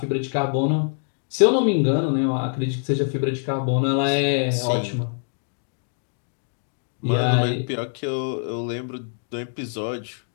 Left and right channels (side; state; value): right; silent; digital silence